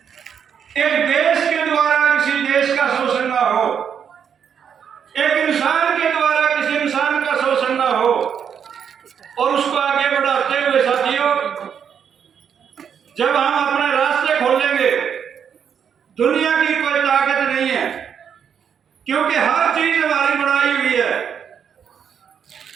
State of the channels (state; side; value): quieter; left; 7.8 dB